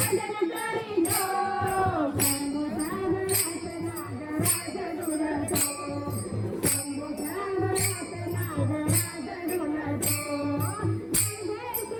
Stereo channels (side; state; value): both; identical; correlation 1.00